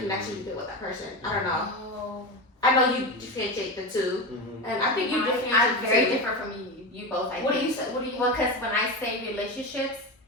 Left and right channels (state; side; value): normal; both; correlation 0.20